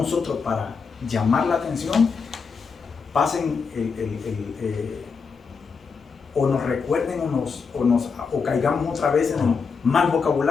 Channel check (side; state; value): right; quieter; 5.4 dB